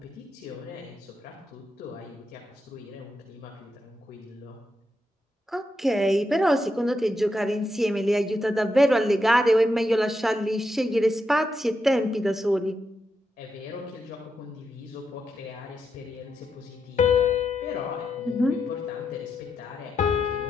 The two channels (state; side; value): normal; both; correlation 0.84